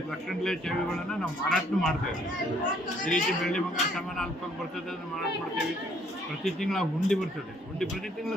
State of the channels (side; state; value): both; normal; correlation 0.65